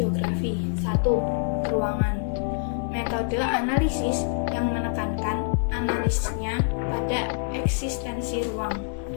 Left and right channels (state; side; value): silent; right; digital silence